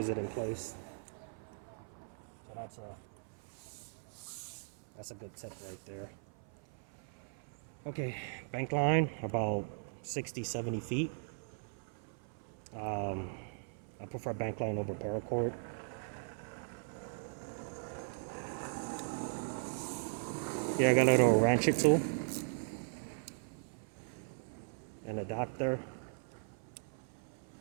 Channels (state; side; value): silent; left; 52 dB below the other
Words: it in place. So that's a good tip right there. Okay, bank line about 60-70 feet. I prefer bank line over paracord. Yeah, I got a little ratchet tool, an adapter,